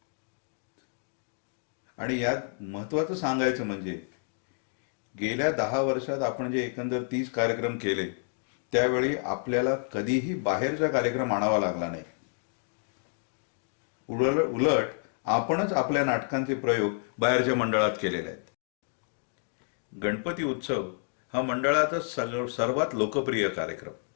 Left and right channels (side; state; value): right; silent; 56 dB below the other